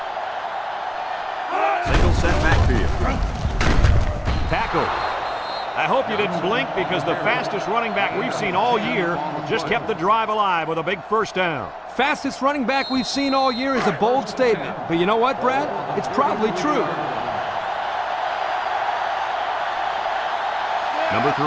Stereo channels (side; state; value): both; identical; correlation 1.00